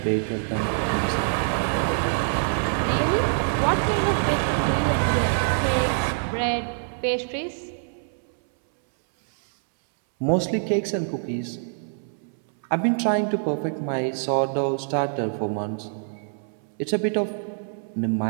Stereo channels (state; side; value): silent; left; 62 dB below the other